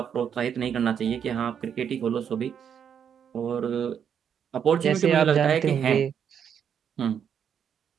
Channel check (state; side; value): quieter; left; 8.1 dB